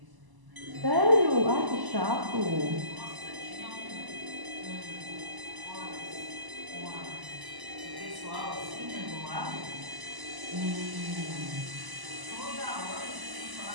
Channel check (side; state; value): left; late; 1.0 ms